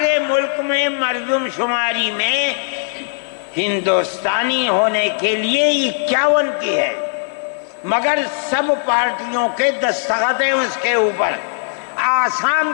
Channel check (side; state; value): right; silent; digital silence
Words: ملک میں مردم شماری میں ہندوستانی ہونے کے لیے 51 کی ہے, مگر سب پارٹیوں کے دستخط ہیں اس کے اوپر. آسام